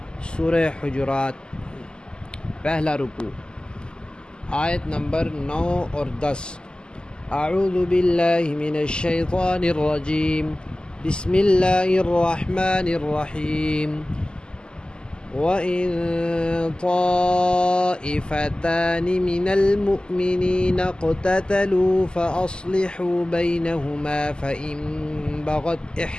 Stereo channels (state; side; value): late; right; 0.047 ms